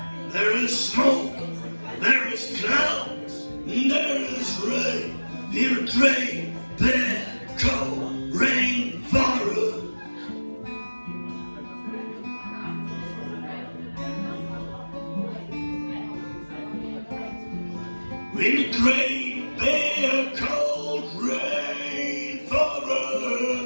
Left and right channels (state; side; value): inverted; both; correlation -1.00